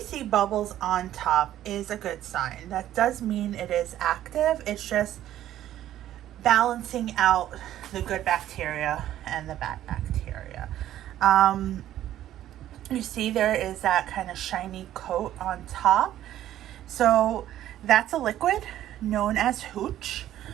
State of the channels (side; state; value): left; quieter; 12.5 dB